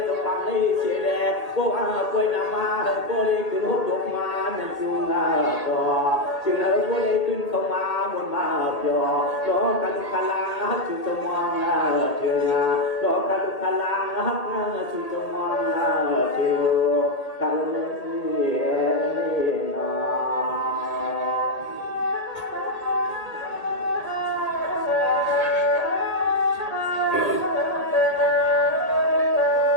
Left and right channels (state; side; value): late; right; 1.8 ms